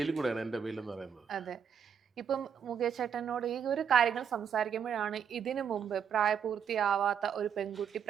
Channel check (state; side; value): quieter; left; 7.7 dB